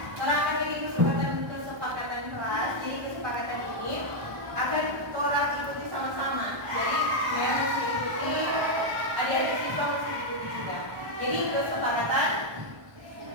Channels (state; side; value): late; left; 1.1 ms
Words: Orang akan memiliki kesepakatan kelas. Jadi kesepakatan ini akan orang ikuti sama-sama. Jadi Mem mesti ikuti, adik-adik siswa mesti ikuti juga. Jadi kesepakatan